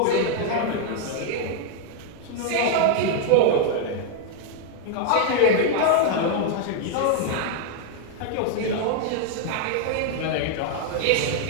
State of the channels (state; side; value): different; both; correlation 0.00